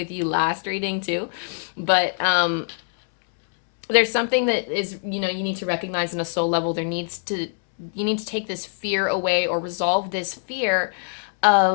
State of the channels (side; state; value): right; silent; 63 dB below the other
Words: you last reading too. But there's something that is, you know, you need to recognize in a soul level. You need to take this fear away or resolve this fear